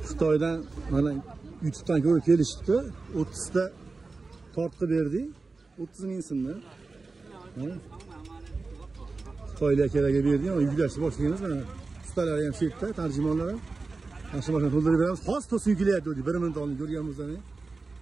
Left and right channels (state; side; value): quieter; left; 3.9 dB